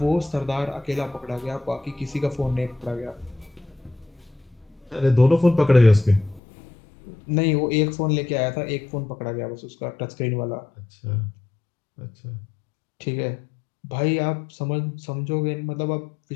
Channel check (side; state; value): right; drops out; at 6.4 s